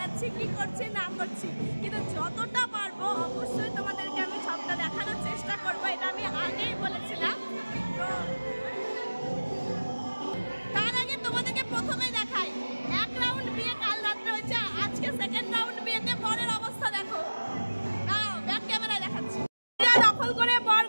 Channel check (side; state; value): both; inverted; correlation -1.00